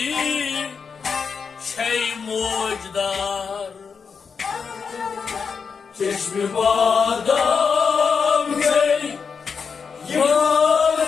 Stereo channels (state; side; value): quieter; right; 5.8 dB